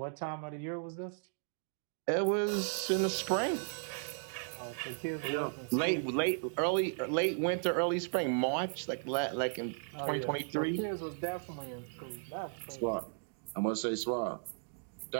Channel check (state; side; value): silent; left; digital silence